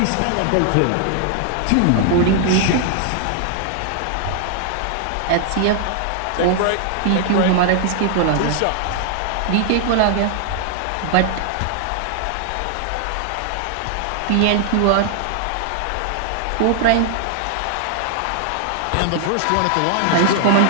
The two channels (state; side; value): different; both; correlation 0.00